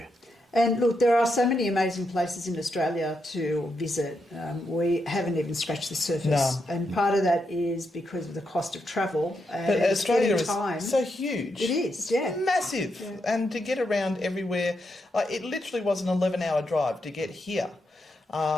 And look, there are so many amazing places in Australia to visit. We haven't even scratched the surface. No. And part of that is because of the cost of travel. And But Australia is time. so huge. It is, yeah. Massive. Yeah. And to get around everywhere, it literally was an 11-hour drive to get here,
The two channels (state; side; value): normal; both; correlation 0.82